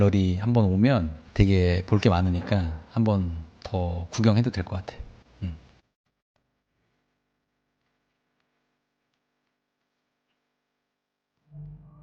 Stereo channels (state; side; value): identical; both; correlation 1.00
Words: 한번 오면 되게 볼 게 많으니까 한번 더 구경해도 될 것 같아.